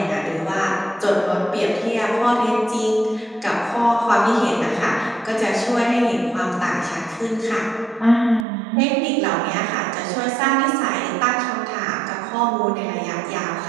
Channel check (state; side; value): drops out; left; at 8.5 s